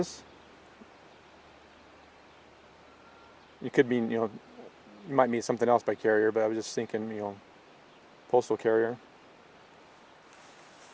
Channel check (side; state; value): both; identical; correlation 1.00